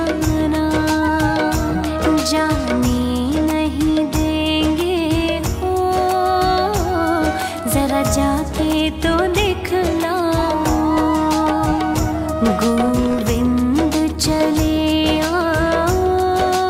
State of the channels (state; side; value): identical; both; correlation 1.00